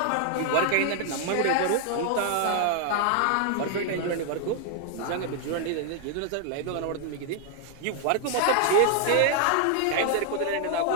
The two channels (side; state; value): both; different; correlation 0.00